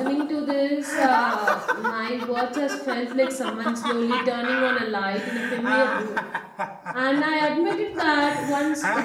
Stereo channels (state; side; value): identical; both; correlation 1.00